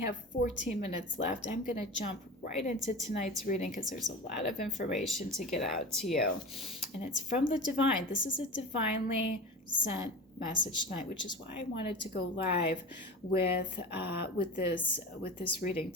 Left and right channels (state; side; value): normal; both; correlation 0.32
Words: 14 minutes left, I'm going to jump right into tonight's reading because there's a lot of information to get out to you. And it's from the divine. This is a divinely sent message tonight, which is why I wanted to go live with this reading